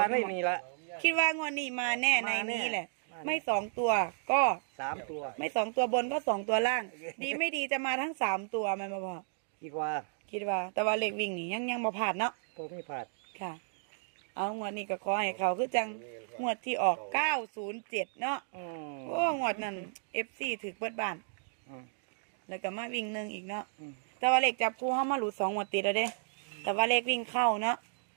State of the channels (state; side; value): silent; left; digital silence